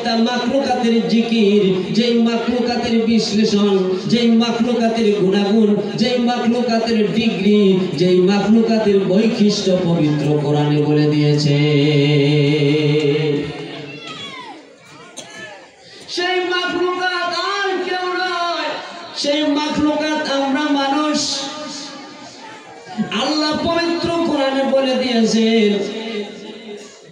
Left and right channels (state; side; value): identical; both; correlation 1.00